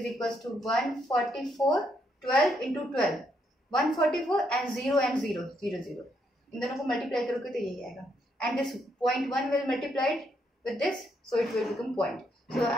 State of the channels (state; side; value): normal; both; correlation 0.75